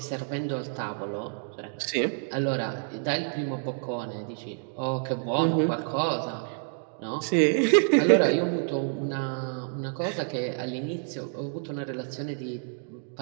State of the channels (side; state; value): left; silent; 59 dB below the other